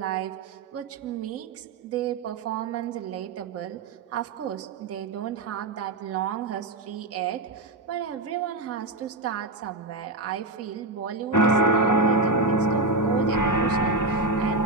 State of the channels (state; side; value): quieter; left; 3.0 dB